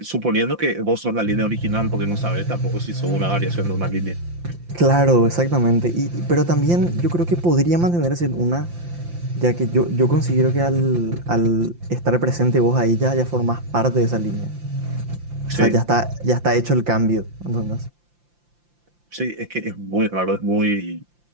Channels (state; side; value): late; left; 5.8 ms